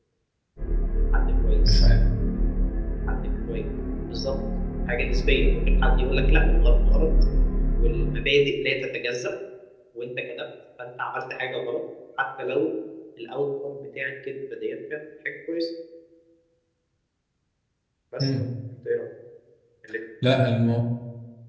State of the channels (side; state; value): both; identical; correlation 1.00